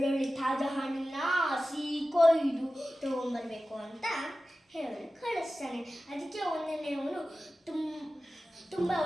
ತಾಜಾ ಹಣ್ಣನ್ನ ಕೊಯ್ದು ತಗೊಂಡ್ಬರ್ಬೇಕು ಅಂತ ಹೇಳಿ ಕಳಿಸ್ತಾನೆ. ಅದಕ್ಕೆ ಒಂದನೇ ಅವನು ತುಂಬ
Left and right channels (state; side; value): normal; both; correlation 0.95